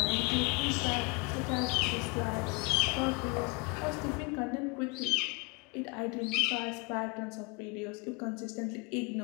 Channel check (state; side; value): quieter; right; 28.3 dB